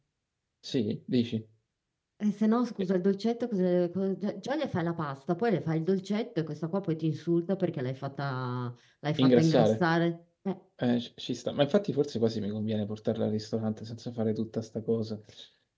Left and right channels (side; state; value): both; identical; correlation 1.00